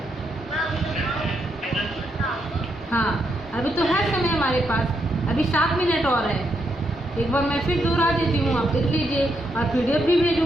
हाँ, अभी तो है समय हमारे पास, अभी 7 मिनट और है। एक बार मैं फिर दोहरा देती हूँ, आप लिख लीजिए, और PDF भी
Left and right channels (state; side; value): normal; both; correlation 0.79